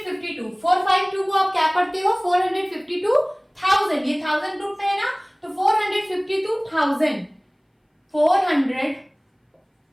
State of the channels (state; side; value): identical; both; correlation 1.00